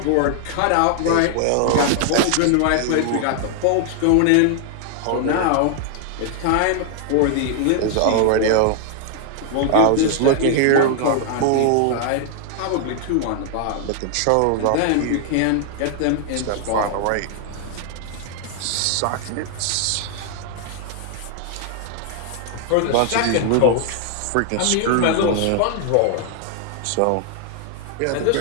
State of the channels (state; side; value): different; both; correlation 0.00